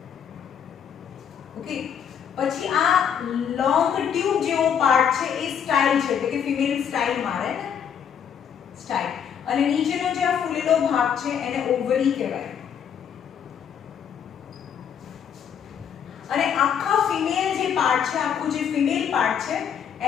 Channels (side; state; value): right; quieter; 8.1 dB